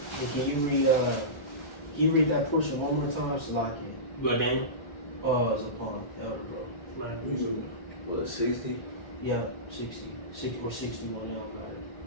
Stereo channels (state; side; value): late; right; 1.4 ms